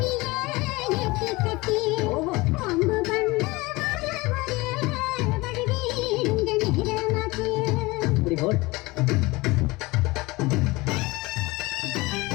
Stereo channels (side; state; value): right; quieter; 22.4 dB